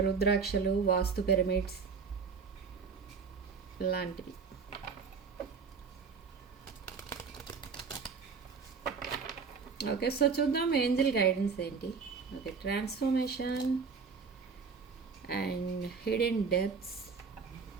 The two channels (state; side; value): quieter; left; 5.3 dB